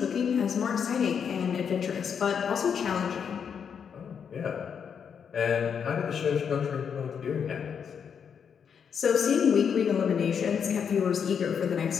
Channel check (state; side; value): quieter; right; 7.2 dB